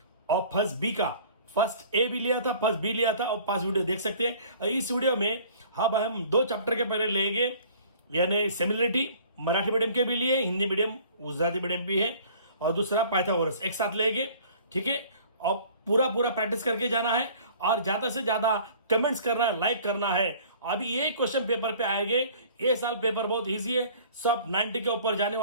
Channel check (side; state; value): both; inverted; correlation -0.50